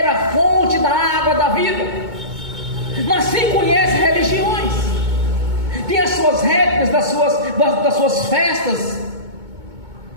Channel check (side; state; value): left; late; 2.2 ms